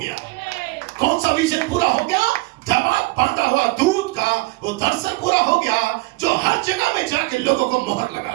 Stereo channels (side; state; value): left; quieter; 23.7 dB